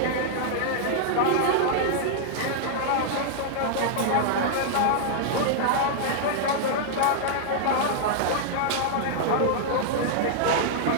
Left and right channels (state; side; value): different; both; correlation -0.01